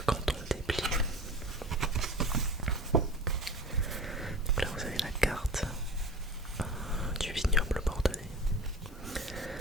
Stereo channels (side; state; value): both; normal; correlation 0.37